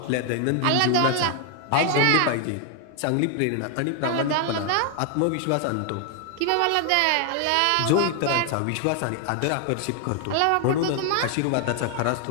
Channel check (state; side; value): different; both; correlation 0.00